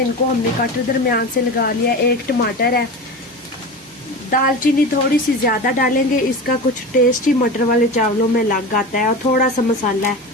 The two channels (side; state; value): both; normal; correlation 0.28